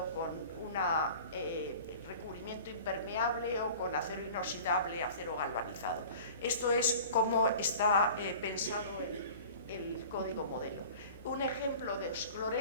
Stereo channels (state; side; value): inverted; both; correlation -0.42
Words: con un recubrimiento impermeable o con acero inoxidable, acero galvanizado. Esto es como está pensado el código modelo. Un ejemplo de los